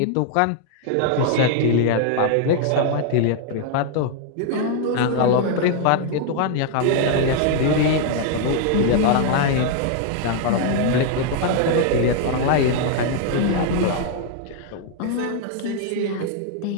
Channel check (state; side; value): different; both; correlation 0.00